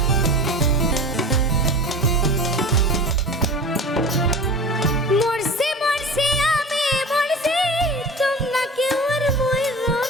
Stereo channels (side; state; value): both; normal; correlation 0.35